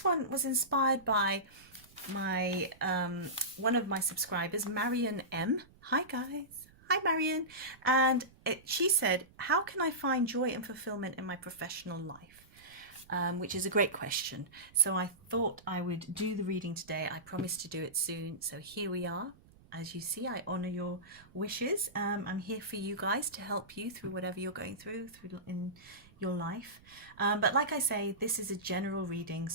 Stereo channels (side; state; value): right; noise; rumble, 26 dB below the sound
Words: one was inspired by my one of my subscribers, Marion M. Hi guys. Hi Marion. And she said, how can I find joy and fulfillment in my professional life? Which is a great question. So I thought I would do the reading today. I promised to do it soon. So here we are. As you see, I honor your wishes. I'm here for you guys to help you through whatever you're going through in your life. But like I say, this is a general reading.